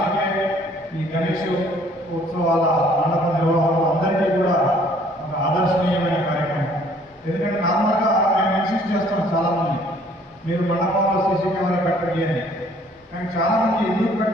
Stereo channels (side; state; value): both; normal; correlation 0.59